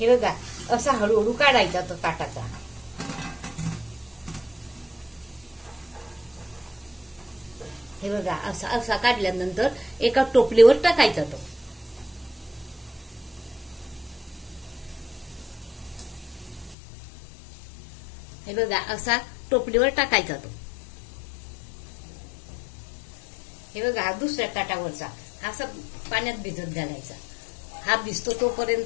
बघा, असा हळूहळू काढायचा तो ताटाचा. हे बघा, असा काढल्यानंतर एका टोपलीवर टाकायचा तो. हे बघा, असा टोपलीवर टाकायचा तो. हे बघा, हा दुसऱ्या ताटावरचा हा असा पाण्यात भिजत घालायचा. हा भिजतो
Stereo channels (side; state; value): right; drops out; at 16.8 s